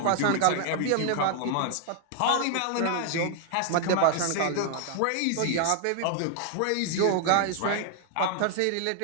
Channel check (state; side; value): different; both; correlation 0.00